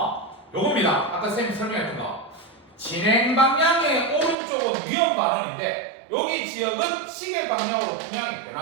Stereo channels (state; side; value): drops out; left; at 4.4 s